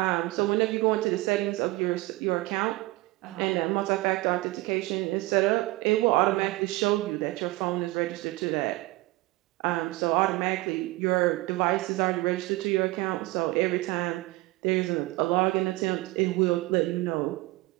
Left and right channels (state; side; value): quieter; left; 20.6 dB